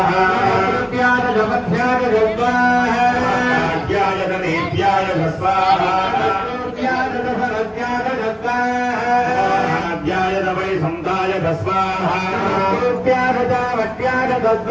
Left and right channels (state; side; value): identical; both; correlation 1.00